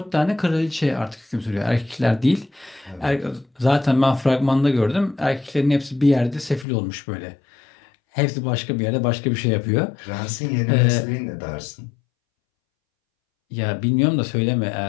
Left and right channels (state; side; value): drops out; right; at 6.7 s